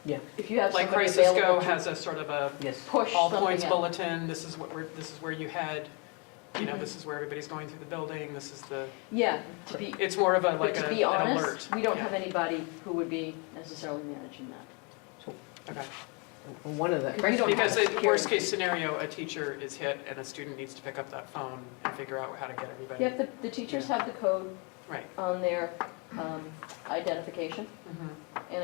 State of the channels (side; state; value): right; quieter; 32.8 dB